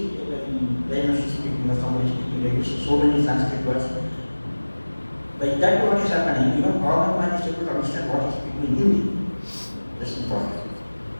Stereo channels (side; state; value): both; inverted; correlation -1.00